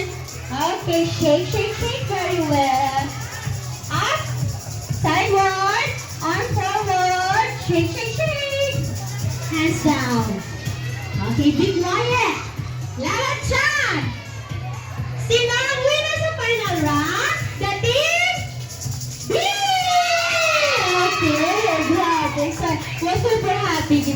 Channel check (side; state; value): both; identical; correlation 1.00